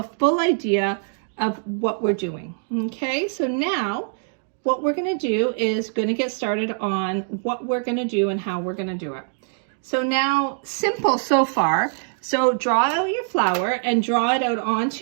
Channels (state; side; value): silent; left; digital silence